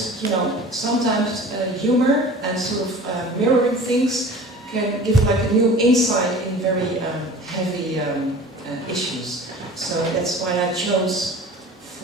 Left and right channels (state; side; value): normal; both; correlation 0.42